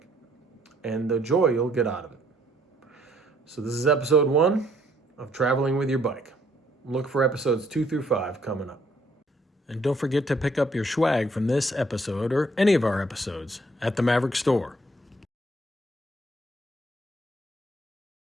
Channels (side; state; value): both; normal; correlation 0.66